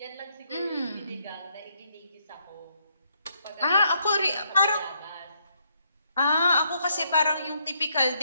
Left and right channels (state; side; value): inverted; both; correlation -0.74